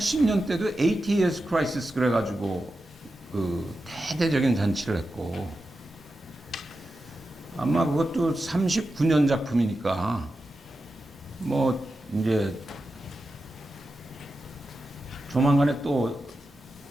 80 years crisis 그래가지고 그 대대적인 잔치를 했고, 아마 그것도 39년 작품이니까 뭐 이제 조만간에 또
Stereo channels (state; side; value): normal; both; correlation 0.91